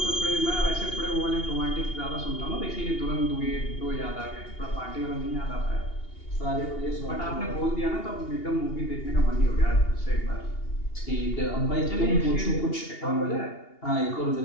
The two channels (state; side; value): late; right; 2.8 ms